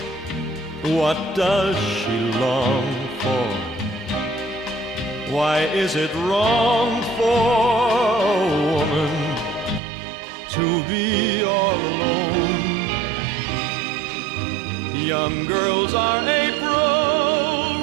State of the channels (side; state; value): left; drops out; at 9.8 s